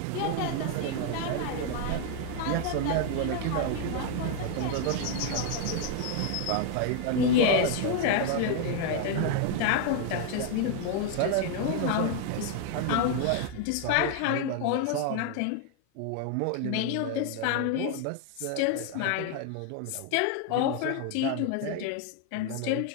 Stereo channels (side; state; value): both; different; correlation 0.00